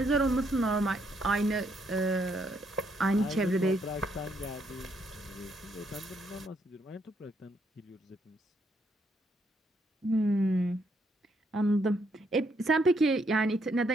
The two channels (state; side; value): normal; both; correlation 0.73